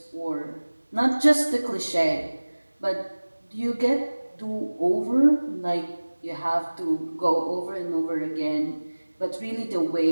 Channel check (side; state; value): both; inverted; correlation -1.00